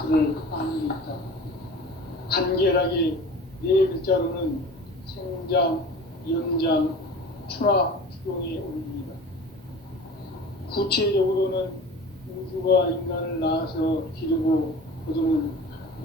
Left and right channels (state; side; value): normal; both; correlation 0.39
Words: 아니니까 간결하게 네 글자로는 생장, 연장, 추나 추동의 원리이다. 구체적으로는 우주가 인간을 낳아서 기르고 거두는